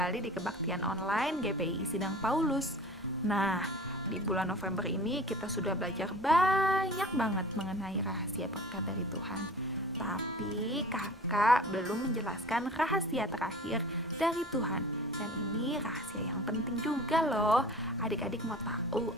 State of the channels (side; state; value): both; normal; correlation 0.41